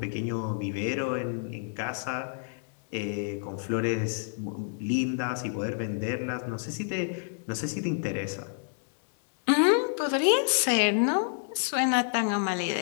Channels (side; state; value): right; silent; digital silence